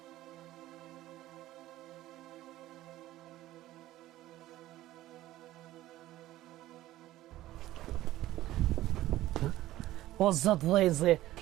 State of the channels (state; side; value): quieter; left; 15.3 dB